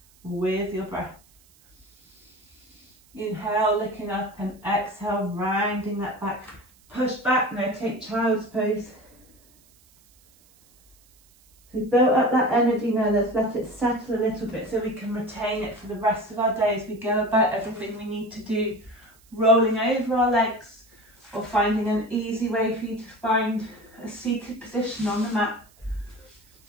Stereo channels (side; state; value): right; noise; hiss, 30 dB below the sound